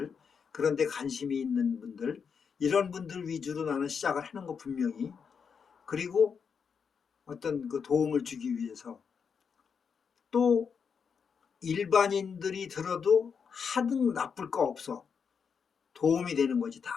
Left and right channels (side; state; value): right; quieter; 6.3 dB